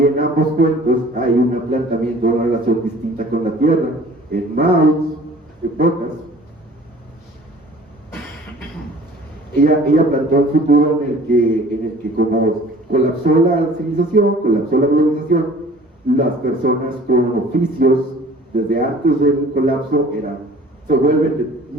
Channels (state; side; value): normal; both; correlation 0.49